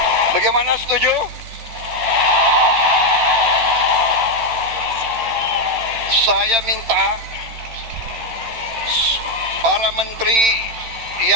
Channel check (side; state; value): left; late; 13 ms